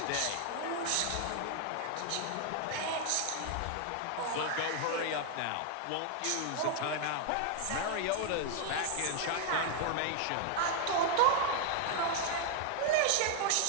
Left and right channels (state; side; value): different; both; correlation 0.00